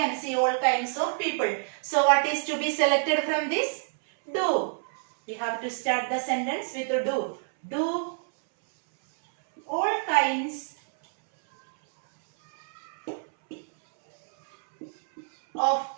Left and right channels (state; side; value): silent; left; 60 dB below the other